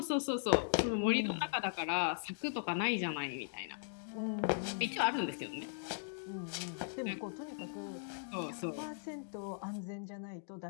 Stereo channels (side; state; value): right; silent; digital silence